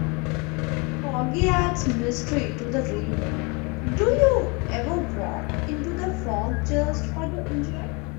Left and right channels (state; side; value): quieter; right; 30.1 dB